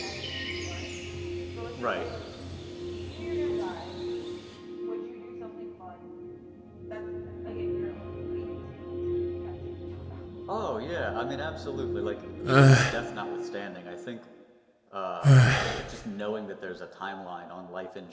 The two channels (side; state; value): both; identical; correlation 1.00